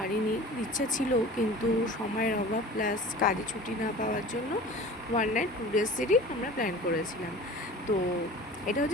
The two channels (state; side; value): normal; both; correlation 0.40